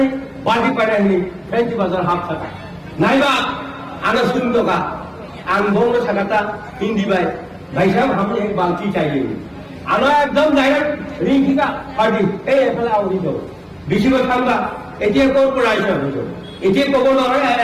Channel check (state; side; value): identical; both; correlation 1.00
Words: বাড়ি পাড়ায় নেই ফেন্সি বাজার হাফ থাকা নাইবা আনা শুনতো কা आं बोंनो सकता हिंदी भाई साहब हमें एक बाल्टी चाहिए आना एकदम डायरेक्ट रिंकी का पार्टी ए एफला आवरी दो बेसि কথা আমরা এতিয়া কোন পড়াইছে হইছো এতিয়া কব নয়